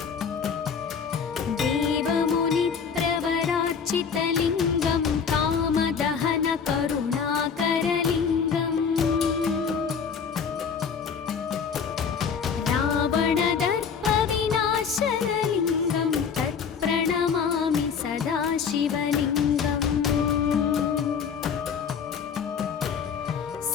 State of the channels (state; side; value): quieter; right; 6.4 dB